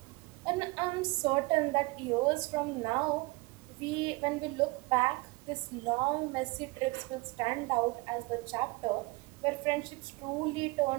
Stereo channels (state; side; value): quieter; left; 25.0 dB